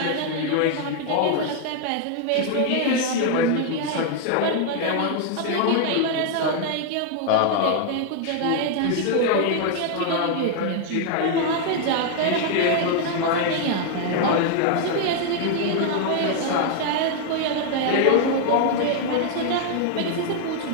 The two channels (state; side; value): different; both; correlation 0.00